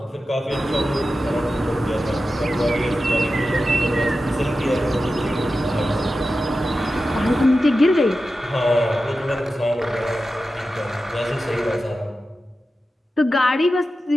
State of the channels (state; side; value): normal; both; correlation 0.92